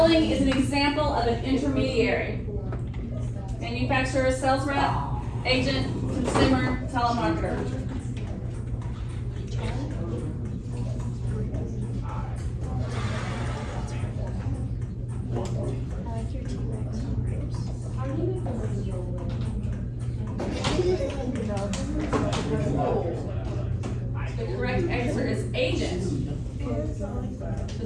is an example of an intermediary? Manufacturer, sales rep, agent, consumer, telemarketer. The correct answer is agent. The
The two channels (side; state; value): both; identical; correlation 1.00